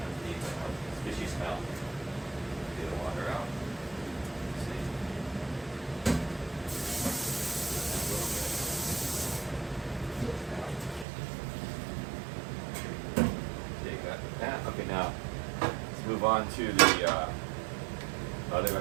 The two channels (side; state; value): left; drops out; at 11.1 s